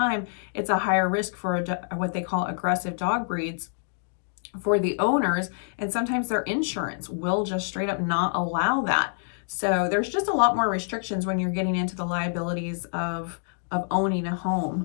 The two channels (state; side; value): silent; right; digital silence